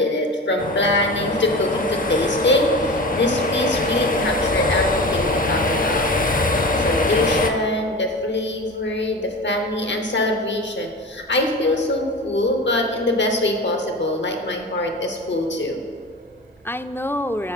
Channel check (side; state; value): both; normal; correlation 0.31